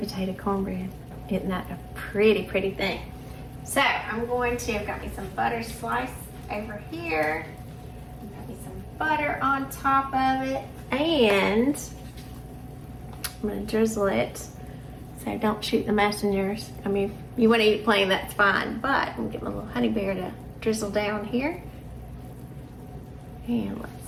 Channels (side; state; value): both; identical; correlation 1.00